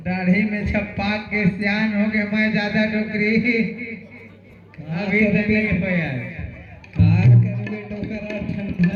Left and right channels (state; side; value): identical; both; correlation 1.00